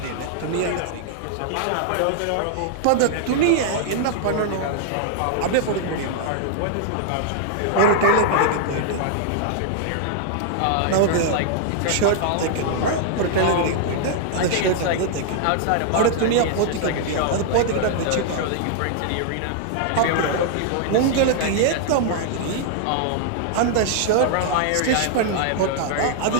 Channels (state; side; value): different; both; correlation -0.01